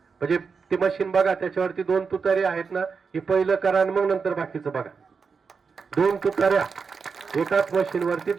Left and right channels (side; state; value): left; quieter; 5.4 dB